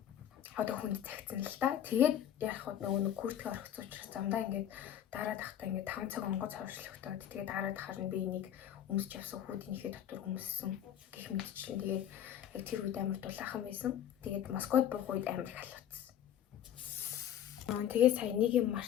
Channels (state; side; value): quieter; right; 10.5 dB